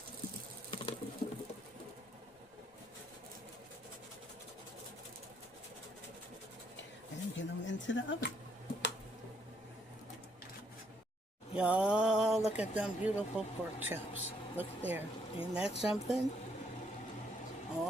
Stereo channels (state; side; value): normal; both; correlation 0.71